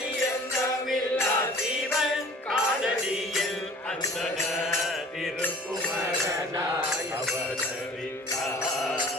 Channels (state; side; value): normal; both; correlation 0.47